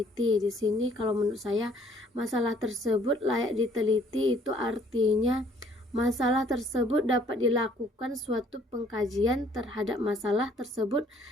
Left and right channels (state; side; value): normal; both; correlation 0.60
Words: Di sini kalau menurut saya masalah tersebut layak diteliti itu artinya masalah tersebut dapat dilakukan suatu pengkajian terhadap masalah tersebut